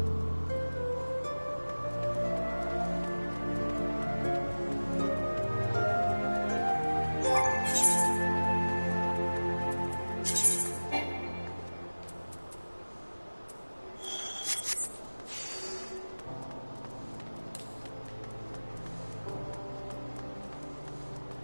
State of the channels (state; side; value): inverted; both; correlation -1.00